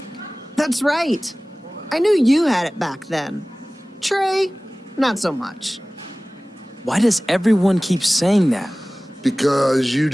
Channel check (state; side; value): normal; both; correlation 0.98